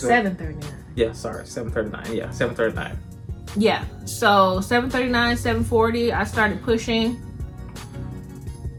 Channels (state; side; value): identical; both; correlation 1.00